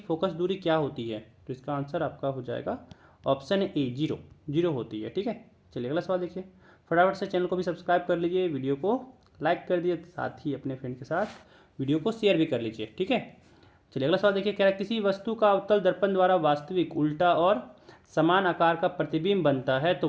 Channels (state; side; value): identical; both; correlation 1.00